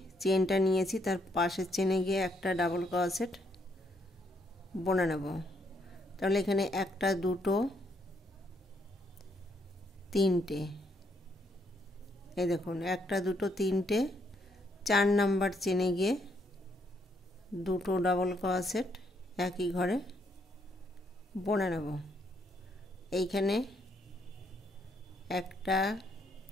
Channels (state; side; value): normal; both; correlation 0.73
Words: চেনটা নিয়েছি তার পাশের চেনে গিয়ে একটা ডাবল ক্রোশেট বুনে নেব। তাহলে এখানে একটা, দুটো, তিনটে, এই দেখুন একটা, দুটো, তিনটে, 4 নাম্বার চেনে গিয়ে দুটো ডাবল ক্রোশেট একই ঘরে বুনে নেব। এইখানে একটা,